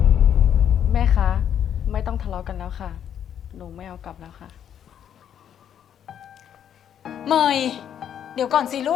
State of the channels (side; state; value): right; quieter; 9.3 dB